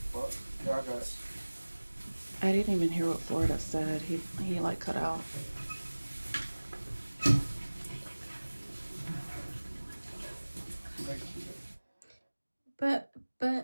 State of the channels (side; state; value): both; inverted; correlation -1.00